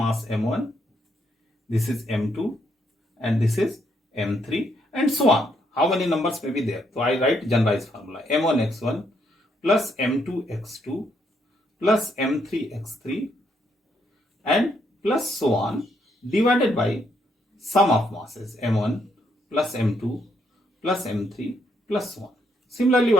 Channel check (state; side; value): normal; both; correlation 0.74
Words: m1, this is m2, and this is m3, and so on. How many numbers may be there? So I write generalized formula: m1 x1 plus m2 x2 plus m3 x3 and plus so on, divided by sum of masses m1 plus m2 plus m3 plus so on. Similarly,